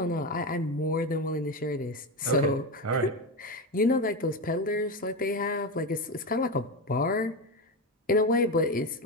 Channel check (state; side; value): normal; both; correlation 0.16